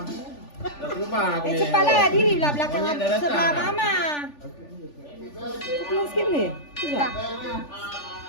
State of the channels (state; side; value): late; right; 3.4 ms